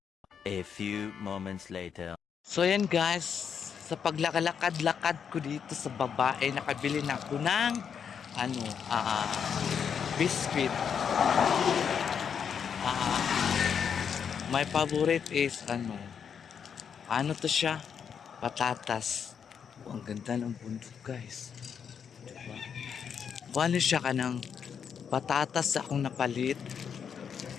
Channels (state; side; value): quieter; right; 7.3 dB